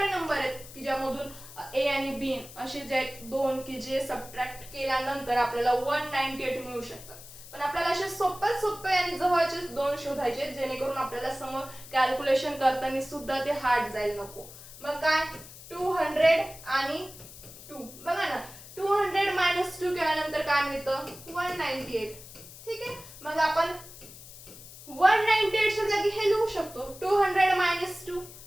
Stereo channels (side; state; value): left; noise; hiss, 16 dB below the sound